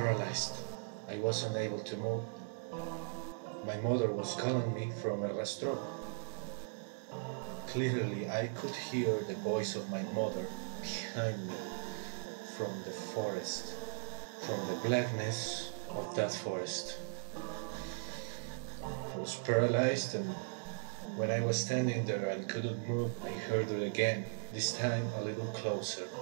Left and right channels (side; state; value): left; silent; digital silence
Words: I wasn't able to move. My mother was calling me from El Rastrojo. Clearly, I could hear the voice of my mother behind me from the forest, from the blackness of that forest. I was paralyzed, and when I was standing there and couldn't move, I heard it again, this time a little closer.